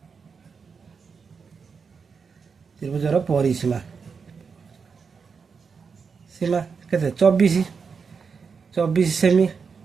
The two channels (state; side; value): quieter; left; 5.6 dB